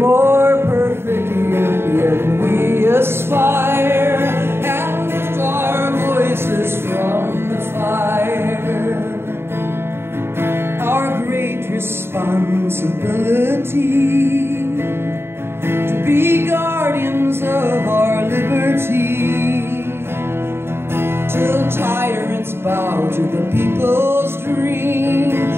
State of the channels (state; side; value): late; left; 0.11 ms